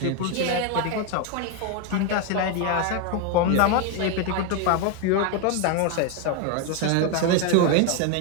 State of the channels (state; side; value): different; both; correlation 0.02